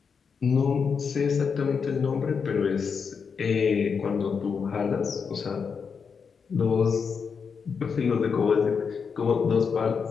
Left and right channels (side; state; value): right; quieter; 6.0 dB